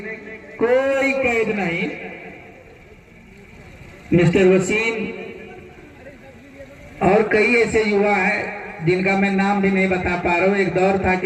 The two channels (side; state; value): both; identical; correlation 1.00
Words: कोई कैद नहीं। मिस्टर वसीम और कई ऐसे युवा है जिनका मैं नाम भी नहीं बता पा रहा हूँ। एक दौर था